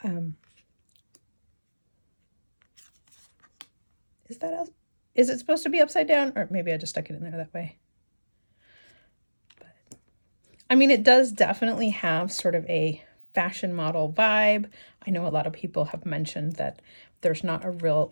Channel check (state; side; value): inverted; both; correlation -1.00